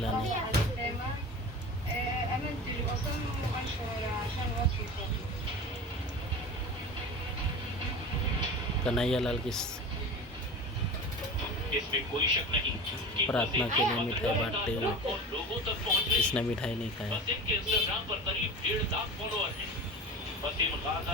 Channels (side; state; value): both; normal; correlation 0.32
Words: नहीं। कन्हैया लाल की इसमें कोई शक नहीं कि प्रार्थना के लिए मिठाई बांटते हुए और लोगों तक पहुंच रही किसने मिठाई नहीं खाया। वसीम के इंस्टाग्राम पर करीब 1.5 लाख फॉलोअर हैं। वसीम गाजा